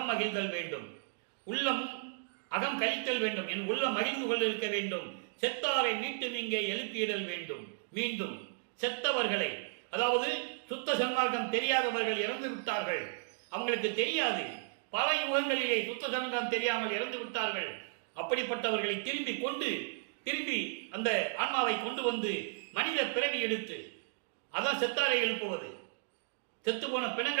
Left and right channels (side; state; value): left; silent; digital silence